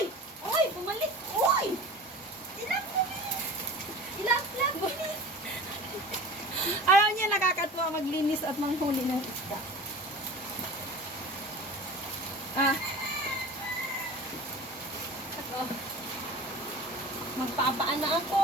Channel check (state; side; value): normal; both; correlation 0.37